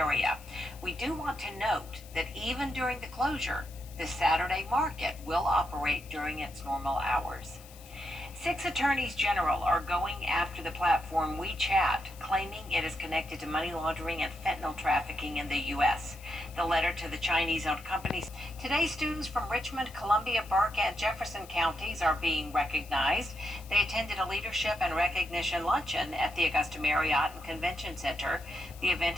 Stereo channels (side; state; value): left; noise; hiss, 21 dB below the sound